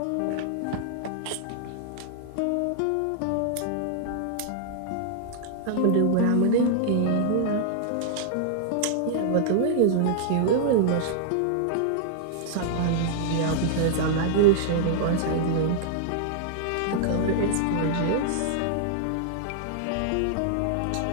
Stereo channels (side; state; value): both; different; correlation -0.01